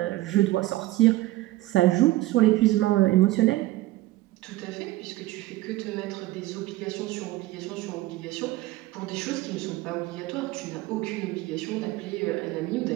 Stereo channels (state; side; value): quieter; left; 17.4 dB